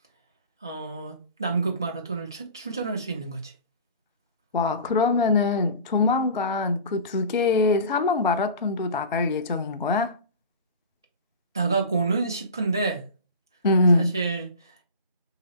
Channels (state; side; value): inverted; both; correlation -0.36